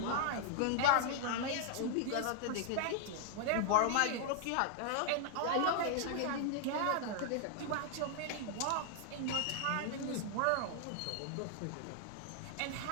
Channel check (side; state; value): both; different; correlation 0.00